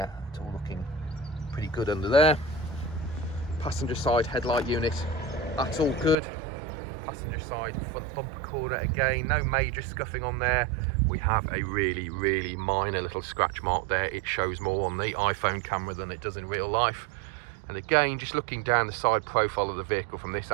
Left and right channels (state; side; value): drops out; left; at 6.2 s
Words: it's all looking pretty good under there. Passenger side headlight unit, that's all good. Passenger side front bumper corner, again, no major scuffing on there. We have a really minor little scratch mark there. It shows more on the iPhone camera than it does in real life. And again, just looking down the side profile of the vehicle from this